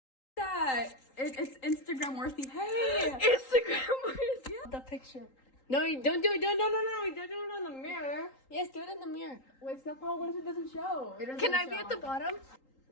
That it's Instagram worthy. Hey, Instagram worthy. The picture. No, don't do it. No. Don't do it on the mirror. Yes, do it in the mirror. wait, stop. What if it doesn't show? Can I be at the bottom?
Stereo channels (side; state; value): right; late; 3.8 ms